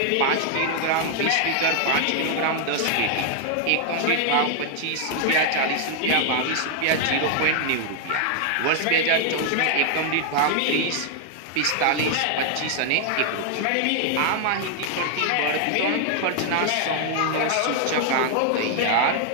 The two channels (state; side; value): different; both; correlation 0.00